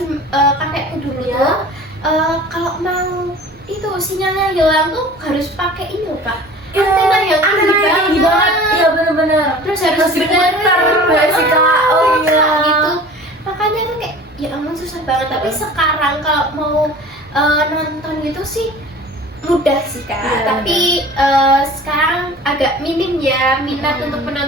kakekku dulu Iya. tuh kalau mau itu sinyalnya hilang tuh harus pakai ini loh Kak, antena yang tinggi banget. Iya bener-bener. Terus harus diputer benerin. nggak sih Kak? Oh iya. Gitu. Makanya tuh kayak ya ampun susah banget. Tapi sekarang kalau mau nonton gitu sih mudah sih Kak. Iya, Tapi sekarang agak minim ya minat untuk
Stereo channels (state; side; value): normal; both; correlation 0.42